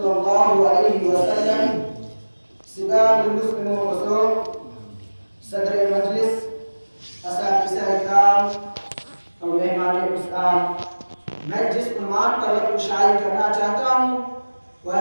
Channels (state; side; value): inverted; both; correlation -1.00